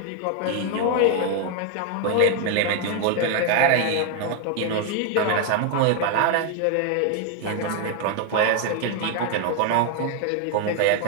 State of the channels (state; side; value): different; both; correlation 0.01